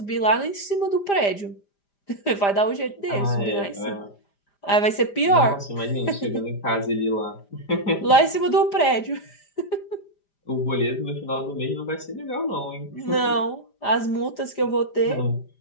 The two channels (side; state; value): right; late; 5.0 ms